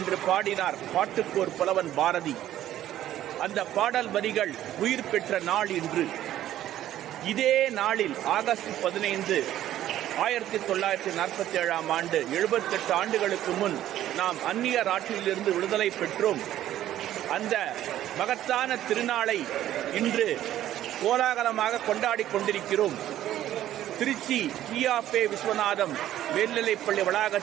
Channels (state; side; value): quieter; left; 12.6 dB